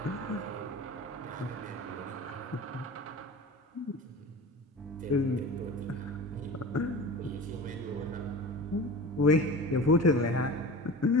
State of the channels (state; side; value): normal; both; correlation 0.35